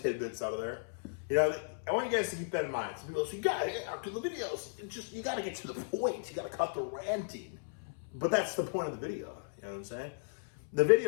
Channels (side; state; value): right; silent; 54 dB below the other